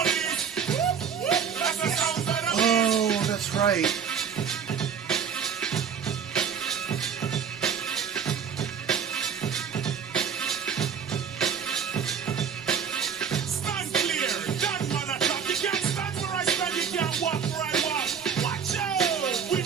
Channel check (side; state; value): left; quieter; 7.1 dB